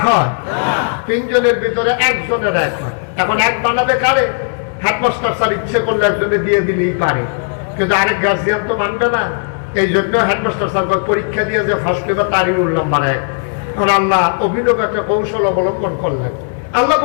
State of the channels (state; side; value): silent; right; 62 dB below the other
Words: হয়। 3 জনের ভিতরে 1 জনের 1 হয়। এখন 1 বানাবে কারে? হেডমাস্টার স্যার ইচ্ছে করলে একজনে দিয়ে দিলেই পারে, কিন্তু আরেক গার্জিয়ান তো মানবে না। এই জন্য হেডমাস্টার স্যার পরীক্ষা দিয়ে যে ফার্স্ট পেপার তারই রোল নাম্বার 1। এখন আল্লাহ অভিনব একটা কৌশল অবলম্বন করলেন। আল্লাহ